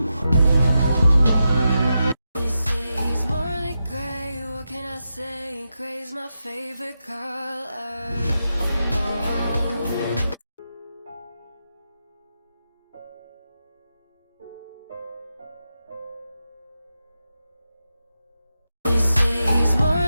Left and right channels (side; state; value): both; inverted; correlation -0.88